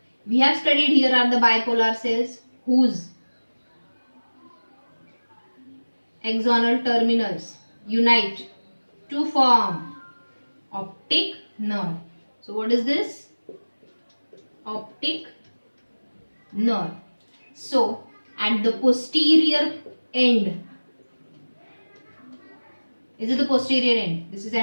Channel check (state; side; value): inverted; both; correlation -1.00